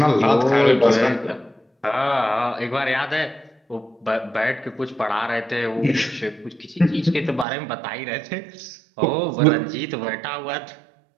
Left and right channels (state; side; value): drops out; left; at 7.5 s